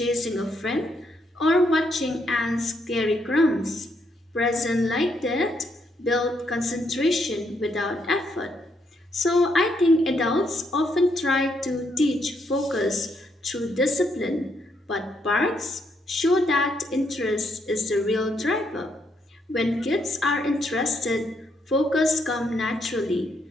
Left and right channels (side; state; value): both; normal; correlation 0.75